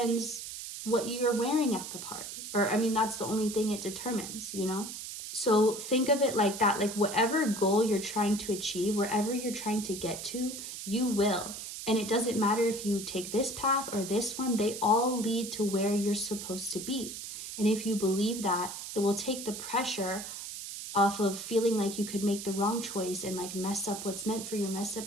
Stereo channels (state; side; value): noise; right; hiss, 8 dB below the sound